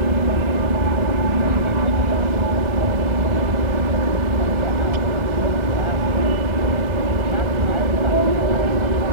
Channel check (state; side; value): late; left; 1.3 ms